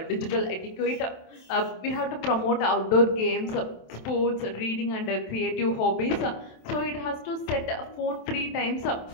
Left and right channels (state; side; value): late; right; 27 ms